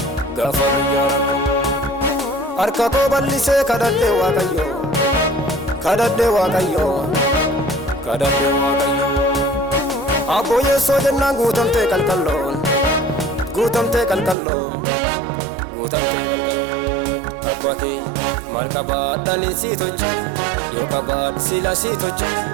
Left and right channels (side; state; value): left; drops out; at 14.4 s